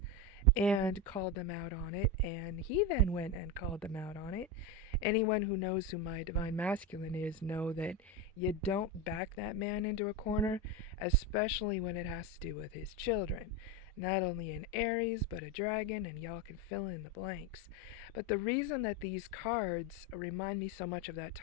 and called them out on it, and he then went and called them out on it. Anyone who knows who my divine masculine is know that you don't back that man into a corner, especially when it has to do with his children. Not only an Aries, but a dragon, and y'all can fill in the blanks. But the reason that these cards remind me so much of that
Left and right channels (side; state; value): both; normal; correlation 0.15